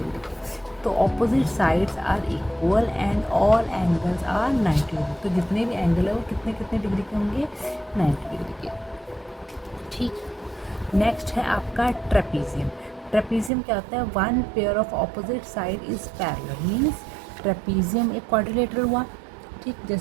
के। तो opposite sides are equal and all angles are 90 degree. तो जितने भी एंगल है वो कितने कितने डिग्री के होंगे, 90 डिग्री के। ठीक, नेक्स्ट है आपका ट्रेपीजियम। ट्रेपीजियम क्या होता है, one pair of opposite side is parallel, means trapezium एक क्वाड्रिलेटरल हुआ। ठीक,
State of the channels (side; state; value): left; drops out; at 13.5 s